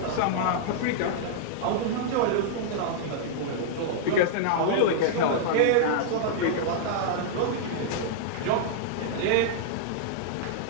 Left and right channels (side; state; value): both; different; correlation -0.02